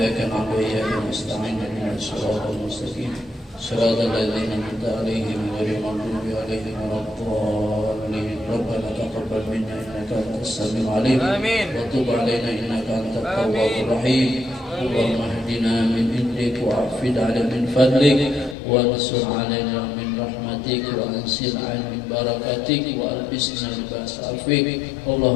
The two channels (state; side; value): drops out; right; at 18.6 s